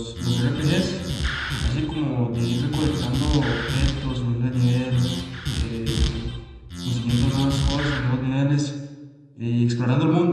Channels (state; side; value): identical; both; correlation 1.00